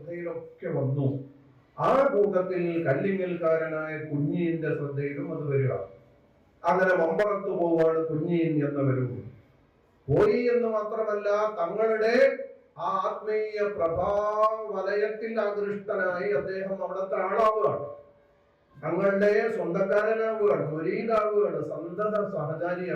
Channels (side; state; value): both; identical; correlation 1.00